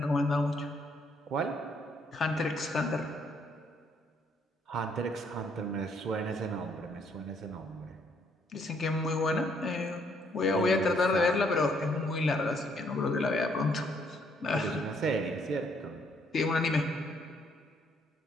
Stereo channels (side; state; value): both; normal; correlation 0.69